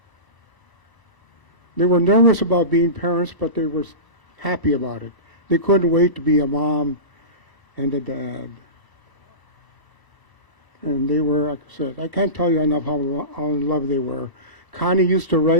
They were nervous about being parents, but they were happy about it. They couldn't wait to be a mom and a dad. And they were, like I said, I can't tell you enough how in love they were. Connie used to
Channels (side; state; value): right; late; 1.0 ms